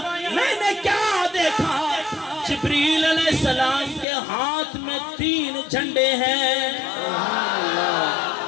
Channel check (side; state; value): right; drops out; at 4.0 s